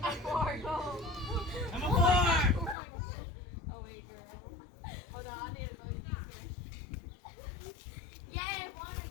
4, go. Number 4. Oh wait, girl. Hold on, I need to go. Yeah, one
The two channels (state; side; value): drops out; right; at 2.8 s